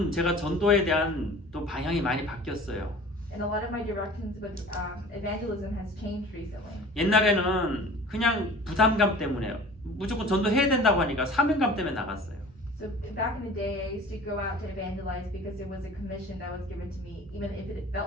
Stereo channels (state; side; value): normal; both; correlation 0.43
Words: 제가 전도에 대한 또 방향이 많이 바뀌었어요. And a lot of my directions with evangelism has changed recently. 옛날에는 그냥 부담감 때문에 무조건 전도해야 된다고 하니까 사명감 때문에 나갔어요. So back in the day, I used to go out to evangelize because it was a commission that was given to me, even if it